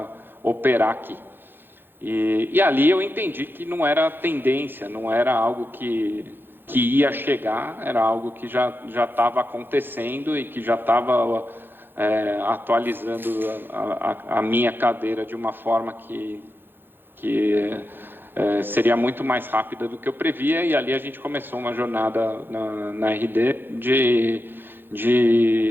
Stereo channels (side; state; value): left; late; 0.099 ms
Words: operar aqui. E ali eu entendi que não era tendência, não era algo que ia chegar, era algo que já estava acontecendo e que já estava atualizando a minha cadeira de uma forma que seria muito mais rápida do que eu previa. E ali a gente começou uma jornada na RD